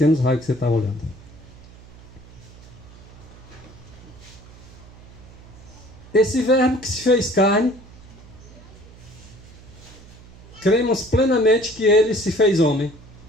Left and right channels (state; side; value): noise; right; hum, 20 dB below the sound